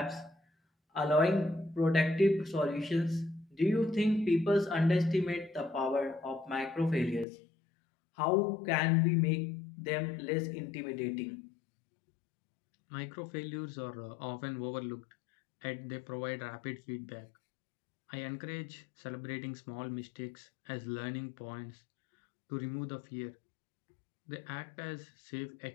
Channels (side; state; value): right; drops out; at 7.2 s